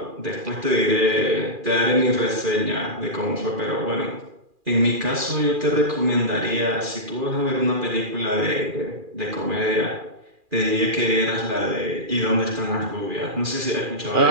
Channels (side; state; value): left; late; 2.4 ms